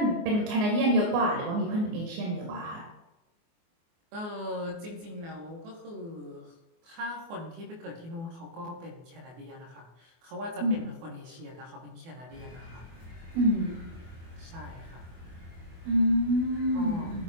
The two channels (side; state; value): left; late; 24 ms